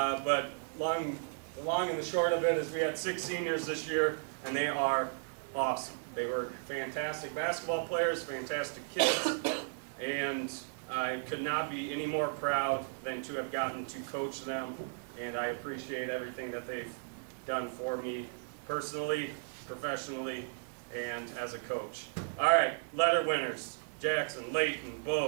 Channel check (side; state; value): left; silent; digital silence